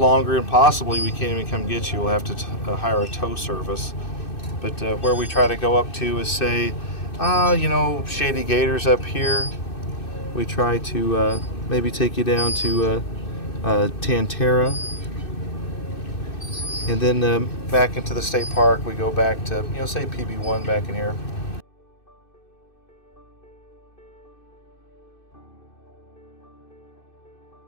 and possibly we can't even come get you. We'll have to hire a tow service. But where we try to go up to is, say, you know, Shady Gators up here. We try to maybe take you down to Tantera. And then back into the state park, we go back to, you know, say PB1 back in here.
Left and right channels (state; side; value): late; right; 2.6 ms